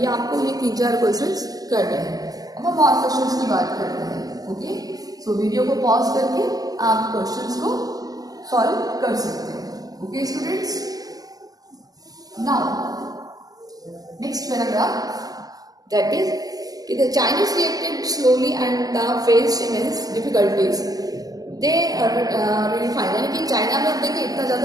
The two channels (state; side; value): late; left; 0.18 ms